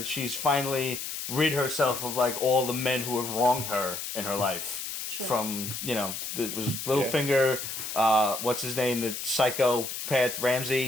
she's finally rid herself of like all the men who have wronged her in her life. True. From it was Littlefinger, what's his name, the psychopath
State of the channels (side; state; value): left; noise; hiss, 6 dB below the sound